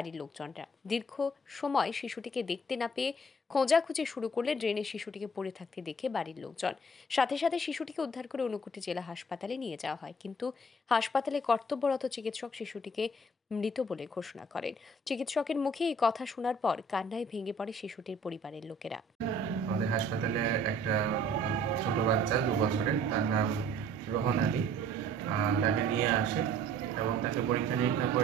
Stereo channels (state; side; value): normal; both; correlation 0.55